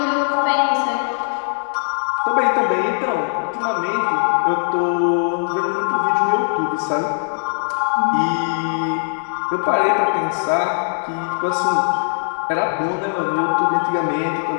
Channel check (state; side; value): silent; right; digital silence